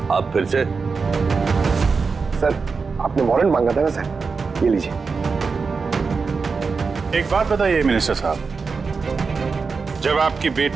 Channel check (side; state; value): left; quieter; 4.8 dB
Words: आप फिर से? सर, आपने वारंट मांगा था ना सर, ये लीजिए। एक बात बताइए मिनिस्टर साहब, जब आपकी